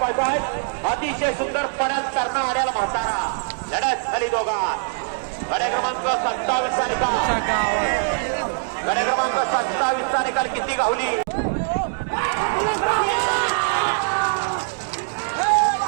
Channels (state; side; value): silent; left; digital silence